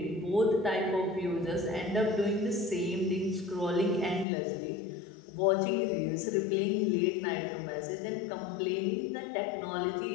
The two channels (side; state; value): right; drops out; at 4.2 s